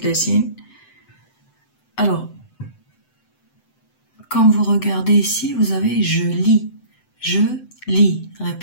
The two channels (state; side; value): late; right; 7.9 ms